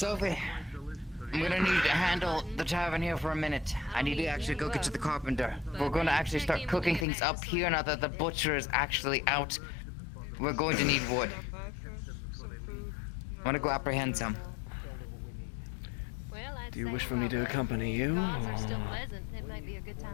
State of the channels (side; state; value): right; drops out; at 7.1 s